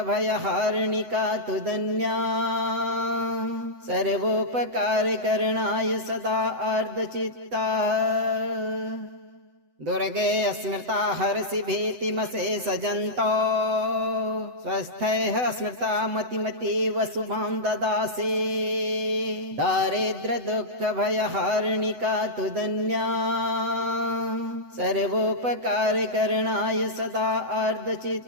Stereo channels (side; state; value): left; late; 7.9 ms